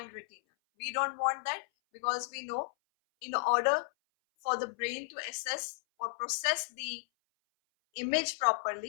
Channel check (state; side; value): silent; right; 55 dB below the other